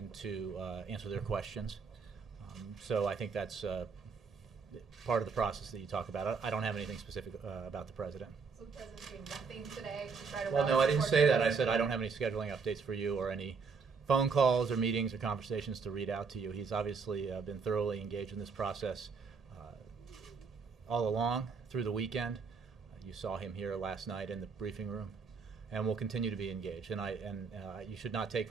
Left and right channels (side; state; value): left; quieter; 5.2 dB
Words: to answer their questions. So I think that's part of the process that you talk about. I don't have anything specific about the president. So the president's doing nothing today to try to Well, rally no, I didn't support say for that. I this? said I don't have any scheduling updates for you or any phone calls or meetings or conversations to read out to you. He's obviously been thoroughly engaged in this process all along through the weekend. You saw him here last night in the briefing room, and will continue to be engaged. And you should not take